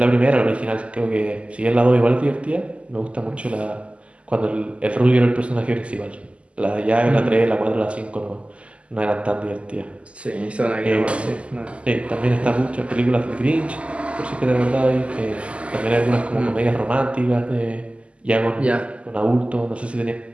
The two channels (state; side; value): late; left; 0.058 ms